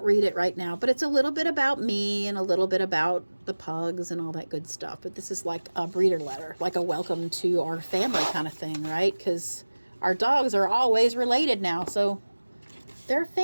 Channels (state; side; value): inverted; both; correlation -1.00